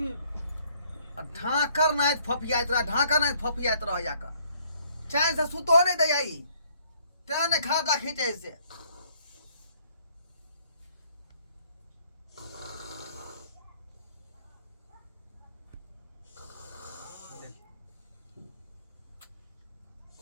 ढाकर नहीं फपियात रहा ढाकर नहीं फपियात रहा जाकर चैन से सुतो नहीं दे आई तेने खाता खींचे से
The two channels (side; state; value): both; inverted; correlation -0.64